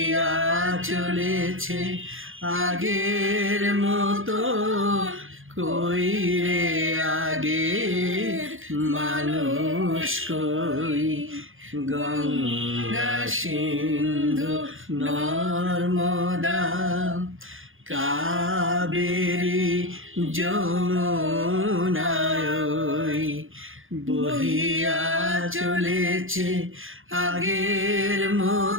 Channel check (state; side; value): late; left; 0.59 ms